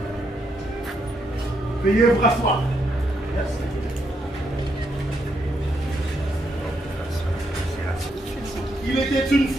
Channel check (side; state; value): both; normal; correlation 0.78